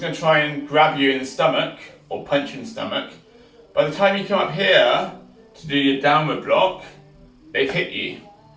going to try and grab you in the stomach, or punch you in the stomach, by the time you come up here to do your downward block, they've hit you.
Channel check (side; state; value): both; identical; correlation 1.00